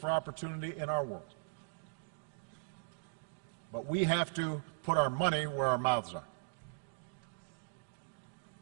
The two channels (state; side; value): silent; left; digital silence